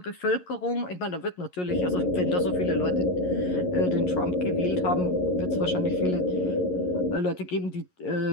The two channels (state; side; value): late; right; 11 ms